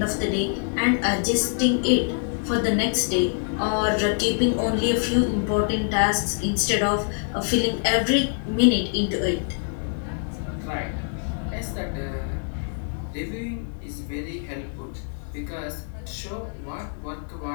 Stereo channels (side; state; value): right; silent; 62 dB below the other